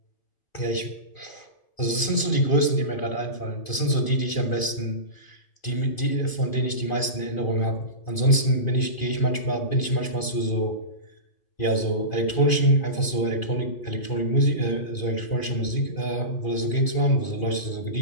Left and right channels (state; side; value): late; right; 2.4 ms